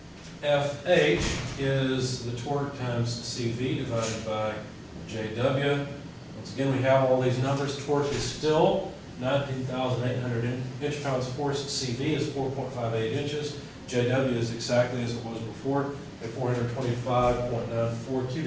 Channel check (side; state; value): both; identical; correlation 1.00